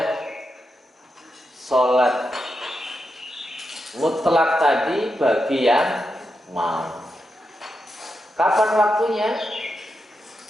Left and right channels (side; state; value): both; normal; correlation 0.86